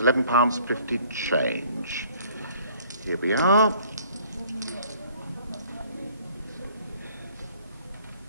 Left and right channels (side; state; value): both; inverted; correlation -0.57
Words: change. Here we are.